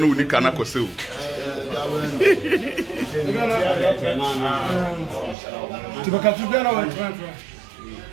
we can go see.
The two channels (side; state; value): left; drops out; at 5.4 s